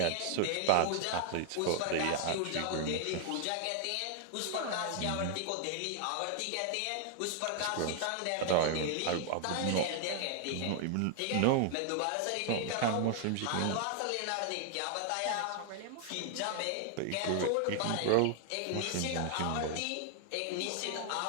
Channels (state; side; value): different; both; correlation 0.00